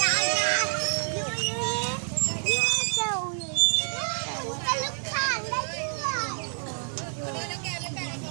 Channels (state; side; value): silent; left; digital silence